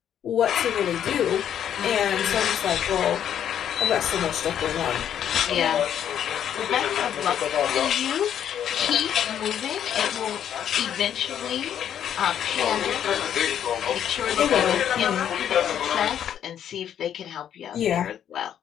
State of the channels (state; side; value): quieter; right; 9.7 dB